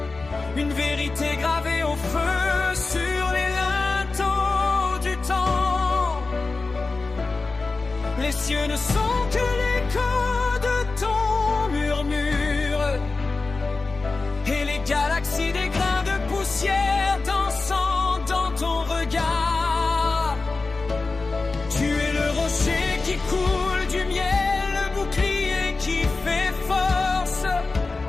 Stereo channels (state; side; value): quieter; right; 3.8 dB